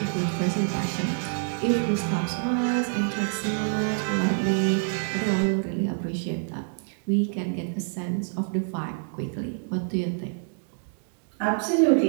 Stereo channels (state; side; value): silent; left; digital silence